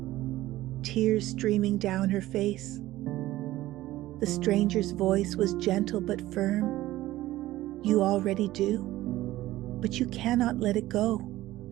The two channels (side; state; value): left; quieter; 16.0 dB